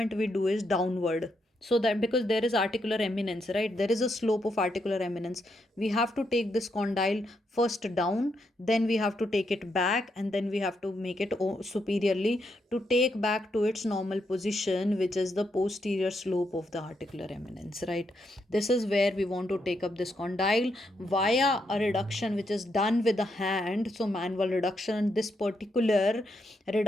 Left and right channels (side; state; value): both; normal; correlation 0.80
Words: we do is downward. So that because there is articular eminence, right? There is a slope of articular eminence. We have to take this condyle first down, then we have to take it back, and then we have to make it superiorly to take back to its normal position, which is the posterior slope of the articular eminence, right? This is where we want to take up this condyle via a reduction which is done with the hand. So manual reduction, this particular